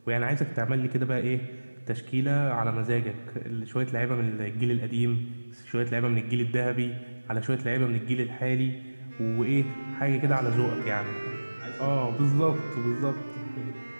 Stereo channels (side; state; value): both; inverted; correlation -1.00